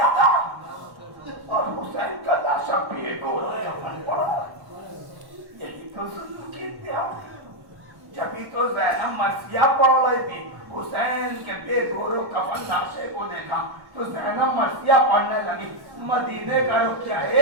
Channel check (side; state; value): left; late; 1.1 ms